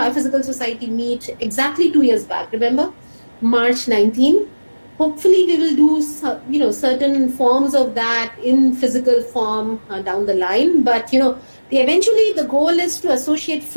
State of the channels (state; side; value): inverted; both; correlation -1.00